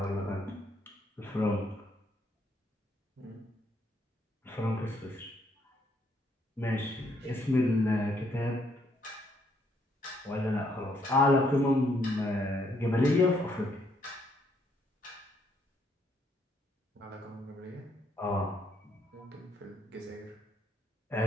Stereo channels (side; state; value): both; normal; correlation 0.71